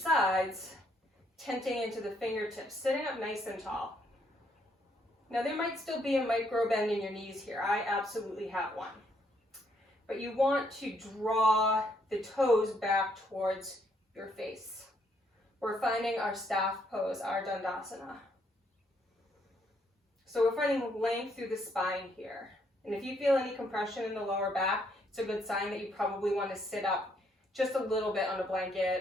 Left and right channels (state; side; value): normal; both; correlation 0.71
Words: tenting into the fingertips, sitting up nice and tall. Now there might still be a micro bend in your knees here. I absolutely have one. But you want to draw the toes back towards your face. We're finding our staff pose, our Dandasana. So we're finding length through the spine here. And if you feel any compression in the lower back, it's a good sign that you probably want to sit up just a little bit on a